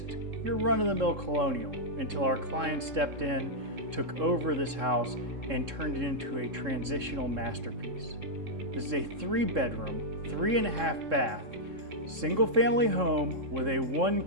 your run-of-the-mill colonial until our client stepped in, took over this house, and turned it into a transitional masterpiece. This is a 3-bedroom, 3.5 bath, single-family home with a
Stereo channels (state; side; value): late; left; 3.7 ms